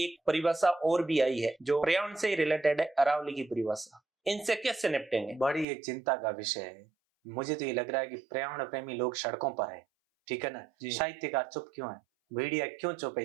परिभाषा और भी आई है जो पर्यावरण से रिलेटेड है, अरावली की परिभाषा। इनसे कैसे निपटेंगे? बड़ी एक चिंता का विषय है। मुझे तो ये लग रहा है कि पर्यावरण प्रेमी लोग सड़कों पर है, ठीक है ना। साहित्यकार चुप क्यों है, मीडिया क्यों चुप है?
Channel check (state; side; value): drops out; left; at 5.7 s